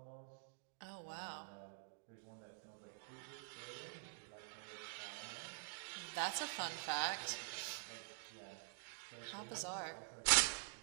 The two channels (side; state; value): left; silent; digital silence